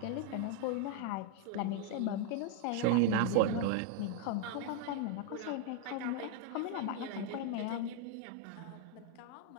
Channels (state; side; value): different; both; correlation 0.00